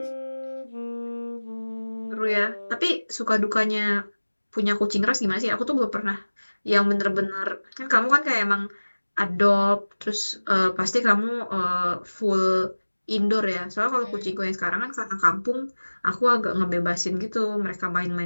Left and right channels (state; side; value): inverted; both; correlation -1.00